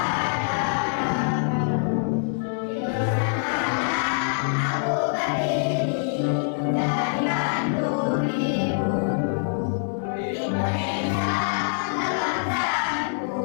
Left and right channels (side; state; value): right; silent; digital silence